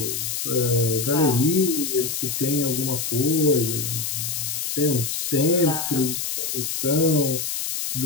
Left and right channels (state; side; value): noise; left; hiss, 2 dB below the sound